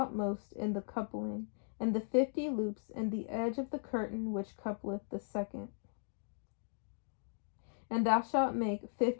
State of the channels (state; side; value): silent; right; digital silence